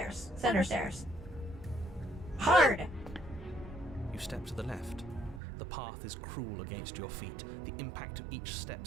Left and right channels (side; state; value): left; drops out; at 5.4 s